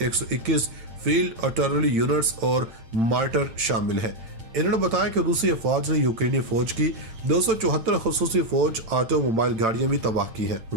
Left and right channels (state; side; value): late; left; 8.8 ms